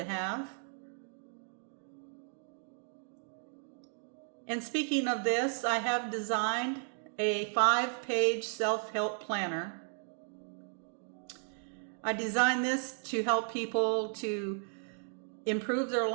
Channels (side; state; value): left; silent; 55 dB below the other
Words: have. And speaking of this, I have designed a 5-page self-help planner. I designed this to help people to improve their